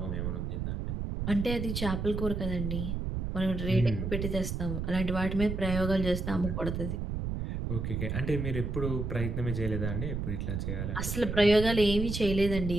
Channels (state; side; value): noise; right; rumble, 3 dB below the sound